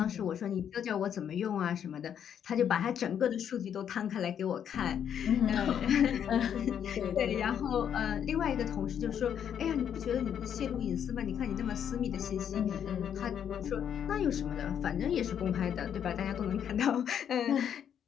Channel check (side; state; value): right; quieter; 8.8 dB